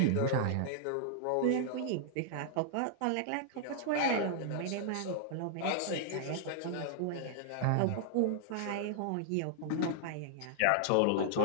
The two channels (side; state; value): both; different; correlation -0.01